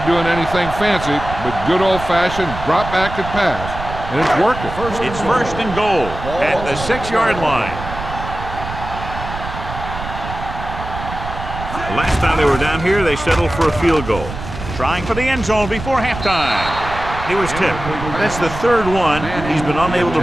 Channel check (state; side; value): noise; right; rumble, 9 dB below the sound